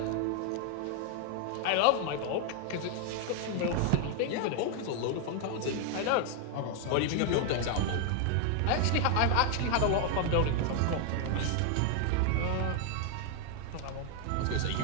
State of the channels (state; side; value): different; both; correlation 0.00